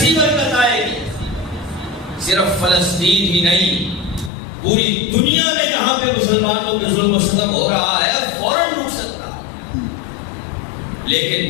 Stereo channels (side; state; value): right; drops out; at 4.3 s